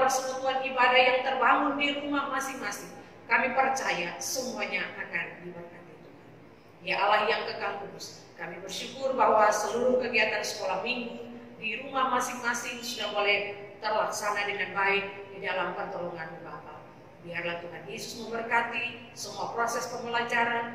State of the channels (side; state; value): both; identical; correlation 1.00